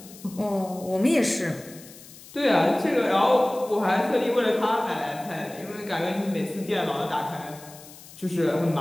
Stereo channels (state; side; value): noise; left; hiss, 19 dB below the sound